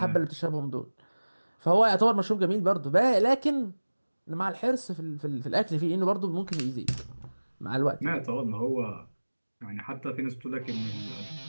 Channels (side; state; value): both; inverted; correlation -1.00